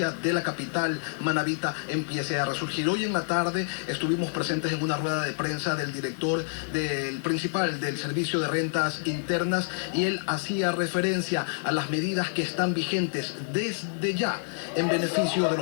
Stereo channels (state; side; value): silent; right; 60 dB below the other